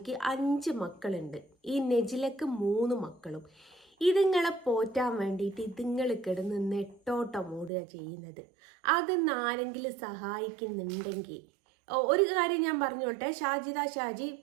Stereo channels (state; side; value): drops out; left; at 7.7 s